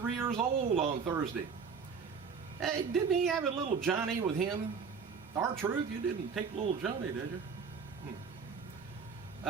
years old on Thursday. Hey, didn't he have a little Johnny with him? R-Truth, you didn't take little Johnny, did you?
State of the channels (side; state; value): left; quieter; 5.8 dB